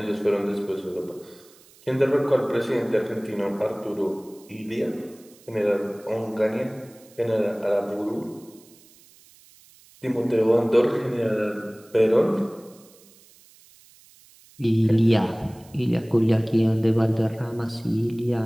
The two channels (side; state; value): right; noise; hiss, 26 dB below the sound